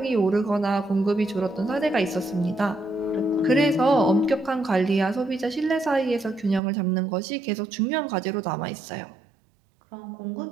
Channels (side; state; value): left; drops out; at 6.6 s